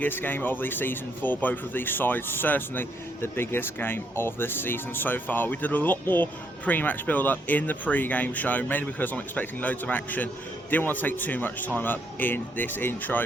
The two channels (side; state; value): both; normal; correlation 0.73